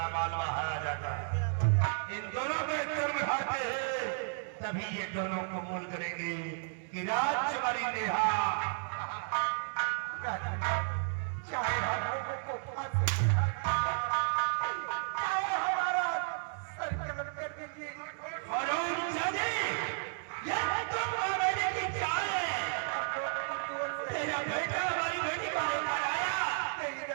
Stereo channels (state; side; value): silent; left; digital silence